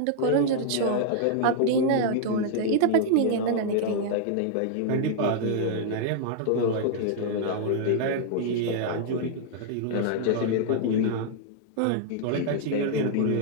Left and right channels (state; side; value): different; both; correlation -0.01